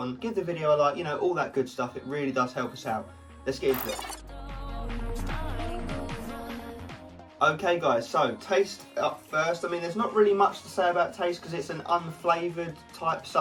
give the video a like, you know, all that good stuff. It really does help us out. Let's get into it. Okay guys, so taste up first. I mean, there's not really much to say about taste because it's an unflavoured type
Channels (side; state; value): both; identical; correlation 1.00